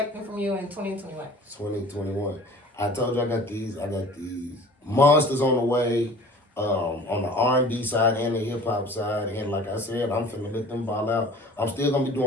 from you in 2021? 2021. I told you I got these monsters on the way, on the R&B side and the hip hop side. And like I said, I'm finna let them ball out. I'm still gonna be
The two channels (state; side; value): normal; both; correlation 0.45